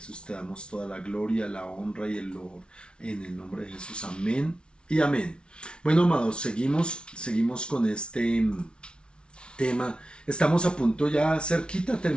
te damos toda la gloria, la honra y el loor. En el nombre de Jesús, amén y amén. Bueno, amados, seguimos con este tema. Estamos a punto ya cerquita de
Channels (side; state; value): right; late; 0.056 ms